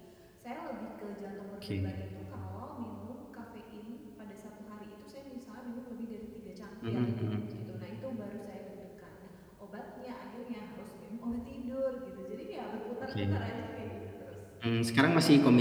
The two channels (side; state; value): both; identical; correlation 1.00